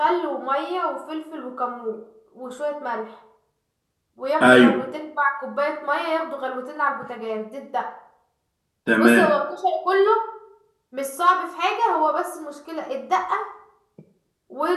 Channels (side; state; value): both; identical; correlation 1.00